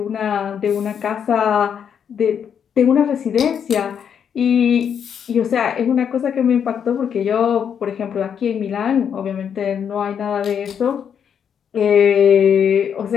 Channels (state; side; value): quieter; right; 7.9 dB